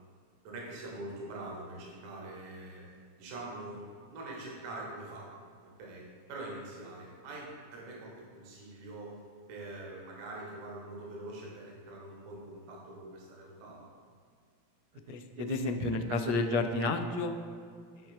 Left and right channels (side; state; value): left; late; 17 ms